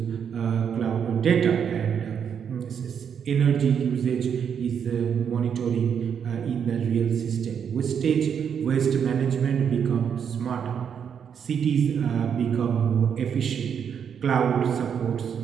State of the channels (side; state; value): left; quieter; 7.7 dB